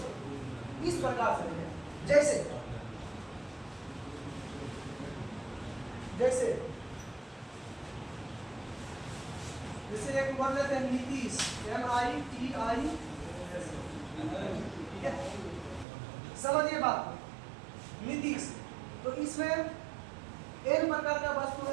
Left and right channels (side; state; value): left; drops out; at 15.9 s